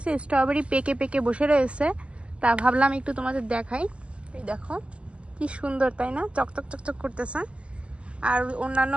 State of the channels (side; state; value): left; late; 0.056 ms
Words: স্ট্রবেরি পেকে পেকে বসে রয়েছে। তা ভাবলাম একটু তোমাদের দেখাই। এই দেখো কি সুন্দর, তাই না? চকচক চকচক করতেছে। আর অন্যান্য